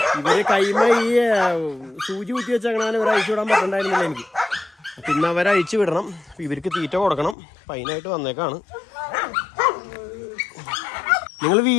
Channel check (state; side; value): drops out; right; at 7.4 s